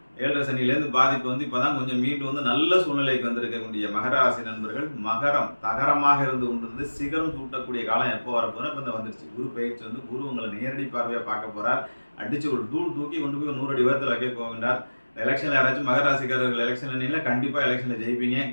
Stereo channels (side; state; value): both; inverted; correlation -1.00